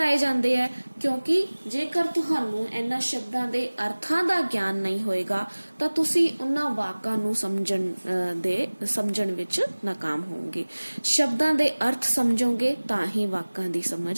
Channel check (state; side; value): inverted; both; correlation -1.00